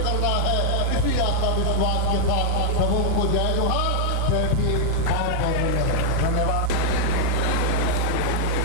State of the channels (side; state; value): both; different; correlation 0.00